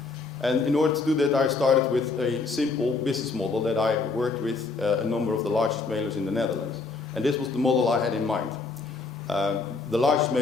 And in order to do that, I started with a simple business model that I worked with a number of the largest mailers in the Netherlands. And this was the model I had in mind. The largest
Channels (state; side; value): quieter; right; 4.1 dB